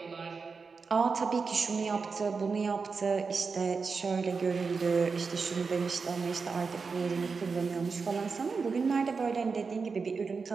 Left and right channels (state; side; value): quieter; left; 4.9 dB